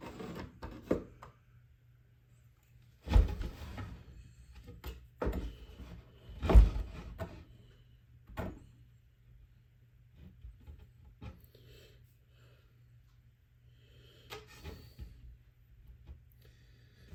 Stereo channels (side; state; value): both; identical; correlation 1.00